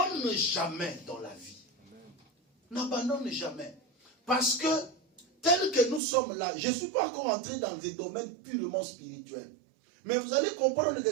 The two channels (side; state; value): left; drops out; at 6.0 s